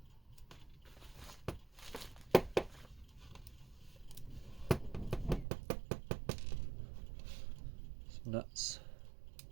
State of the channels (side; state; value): left; drops out; at 5.5 s